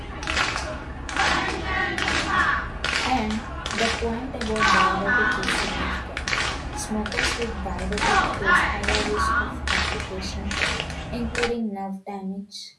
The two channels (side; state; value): both; identical; correlation 1.00